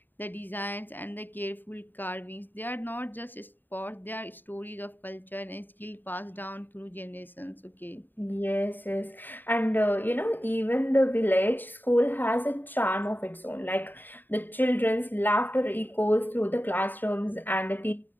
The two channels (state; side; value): late; right; 0.091 ms